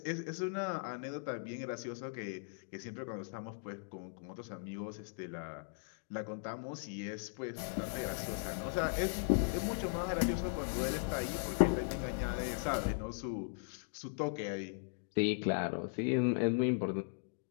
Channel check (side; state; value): right; silent; digital silence